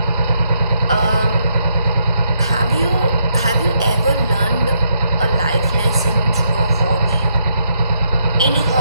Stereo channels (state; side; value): inverted; both; correlation -0.76